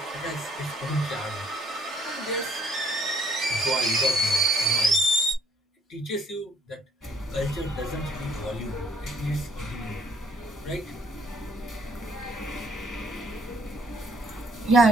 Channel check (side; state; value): both; normal; correlation 0.65